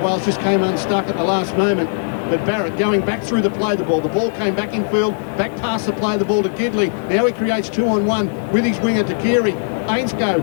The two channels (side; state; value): right; silent; 56 dB below the other